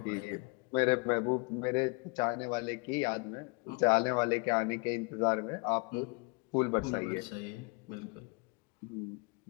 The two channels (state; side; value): quieter; right; 31.0 dB